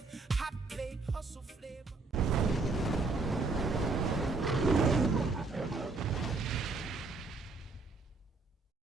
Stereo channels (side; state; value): left; quieter; 3.9 dB